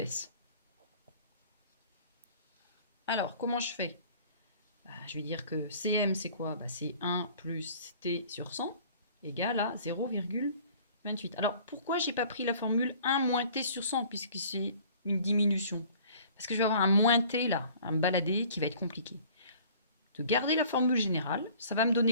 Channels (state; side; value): inverted; both; correlation -0.51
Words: Alors, comment je fais? Je vais dire que Cm, c'est quoi? C'est 1 plus t sur 100 égale à 0,28. Alors, pourquoi je n'ai pas pris la formule 1 moins t sur 100 puisque c'est une diminution? Parce que je vais avoir un moins t là, un baladé qui va être compliqué. De garder la formule générale, ça va me